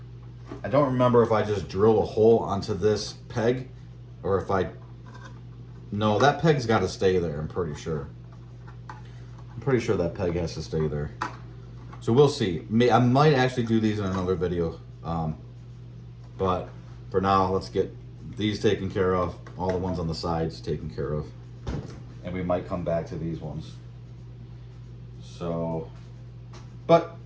if I just drill a hole onto this peg or if no, that peg's got to stay there, I'm pretty sure. I'm pretty sure that peg has to stay there. So we'll see. I might actually do these in another video. But for now, let's get these taken care of. All the ones on the sides taken care of. And we might come back to these ones. So, but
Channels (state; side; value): identical; both; correlation 1.00